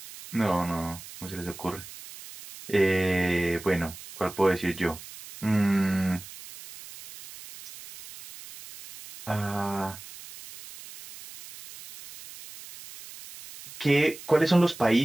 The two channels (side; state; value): right; noise; hiss, 16 dB below the sound